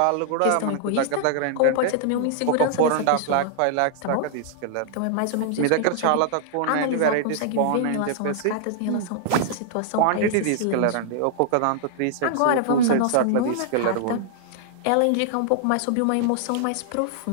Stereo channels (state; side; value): different; both; correlation -0.01